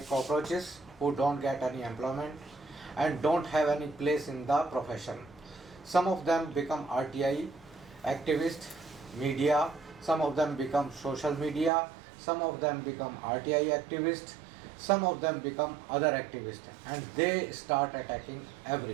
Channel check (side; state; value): left; drops out; at 11.7 s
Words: cockroaches who don't get any employment and don't have any place in the profession. Some of them become RTI activists, media, some of them become social media, some of them become RTI activists, some of them become other activists, and they start attacking